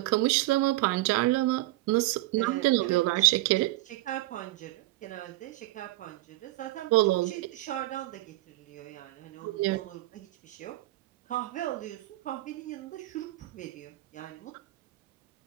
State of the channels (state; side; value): quieter; left; 18.4 dB